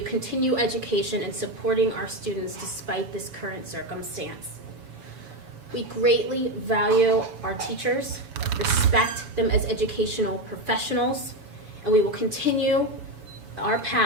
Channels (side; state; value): left; late; 7.1 ms